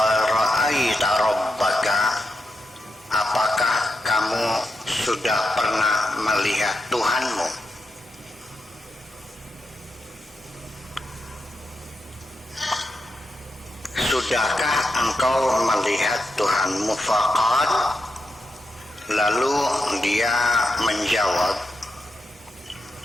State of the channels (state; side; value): normal; both; correlation 0.85